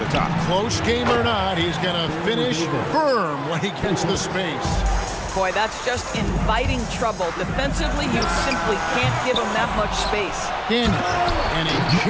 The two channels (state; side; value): identical; both; correlation 1.00